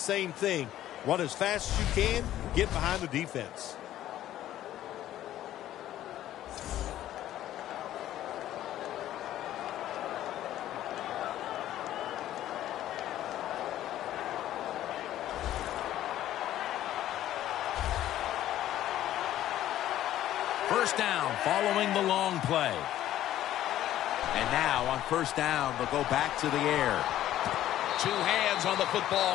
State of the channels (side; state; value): right; quieter; 12.9 dB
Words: thing. Run as fast as you can, get behind the defense. first down following the long play. And now on first down, they'll go back to the air. Two hands on the